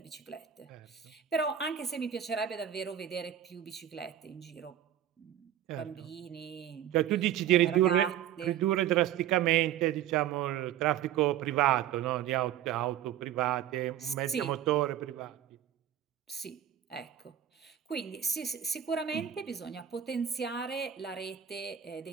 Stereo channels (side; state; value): left; quieter; 10.6 dB